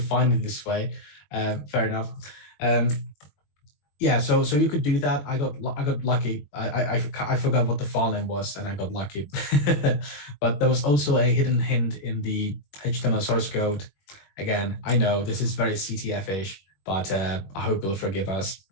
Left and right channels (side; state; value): right; late; 21 ms